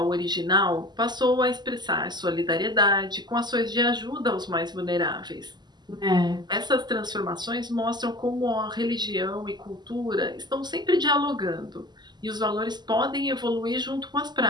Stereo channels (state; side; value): late; left; 0.21 ms